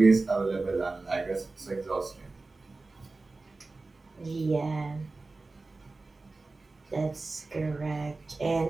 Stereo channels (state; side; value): quieter; left; 3.5 dB